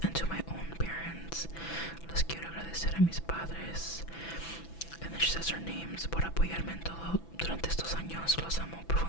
and to my own parents, les quiero agradecer a mis padres. And then she says her names, por apoyarme en todo durante estos años, los amo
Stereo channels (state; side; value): late; right; 6.0 ms